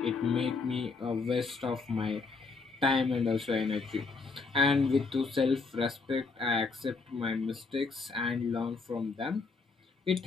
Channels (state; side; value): quieter; right; 4.3 dB